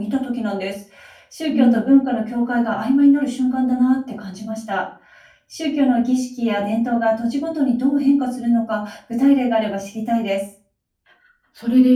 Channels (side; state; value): both; identical; correlation 1.00